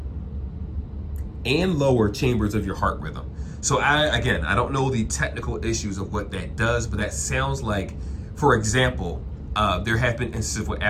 and lower chambers of your heart rhythm. So I don't know the technical issues of what that does, but that sounds like, for example, there have been instances with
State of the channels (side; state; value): both; identical; correlation 1.00